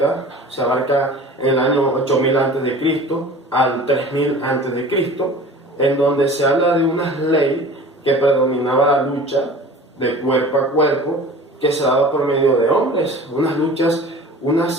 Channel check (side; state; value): both; normal; correlation 0.42